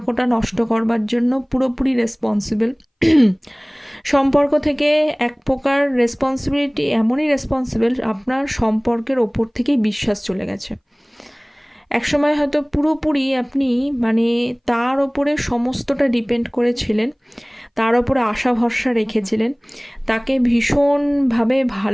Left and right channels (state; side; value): identical; both; correlation 1.00